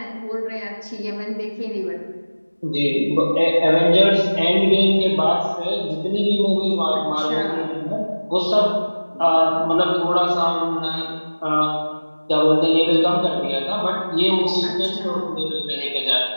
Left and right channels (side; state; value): both; inverted; correlation -1.00